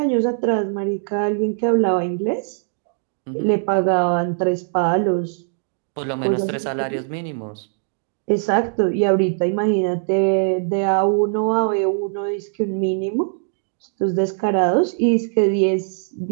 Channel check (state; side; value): silent; left; 63 dB below the other